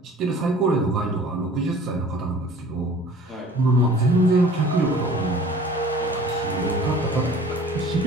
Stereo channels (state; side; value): normal; both; correlation 0.47